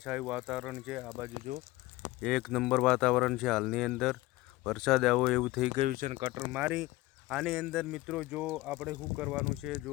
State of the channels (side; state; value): right; quieter; 19.1 dB